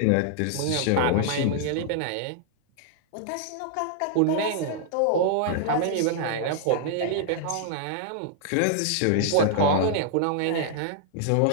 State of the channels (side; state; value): both; different; correlation -0.01